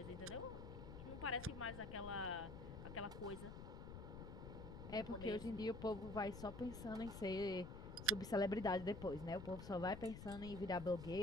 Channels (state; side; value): noise; left; rumble, 10 dB below the sound